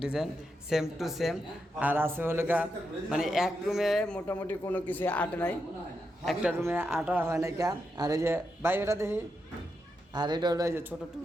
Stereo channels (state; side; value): normal; both; correlation 0.85